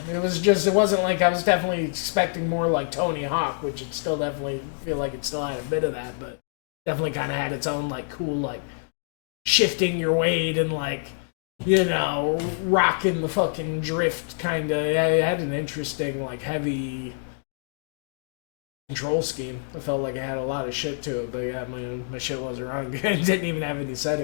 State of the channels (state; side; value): silent; right; digital silence